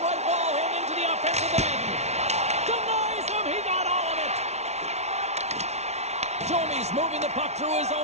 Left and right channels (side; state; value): left; late; 0.32 ms